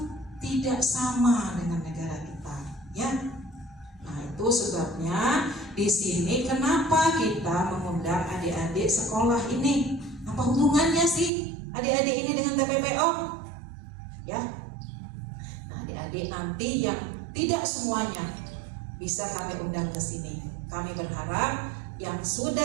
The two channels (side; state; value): left; drops out; at 11.3 s